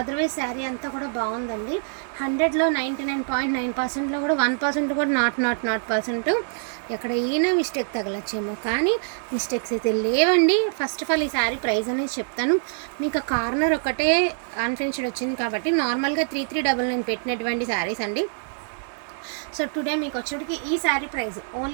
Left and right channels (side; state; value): left; silent; digital silence